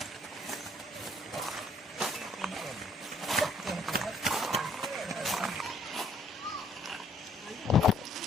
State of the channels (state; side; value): normal; both; correlation 0.63